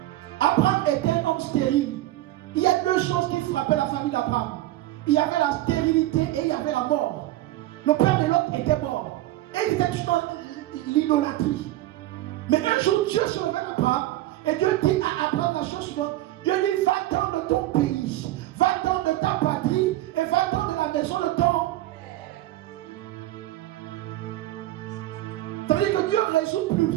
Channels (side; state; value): left; quieter; 15.8 dB